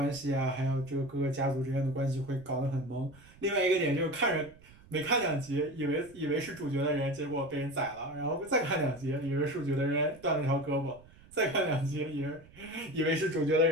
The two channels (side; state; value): right; noise; rumble, 24 dB below the sound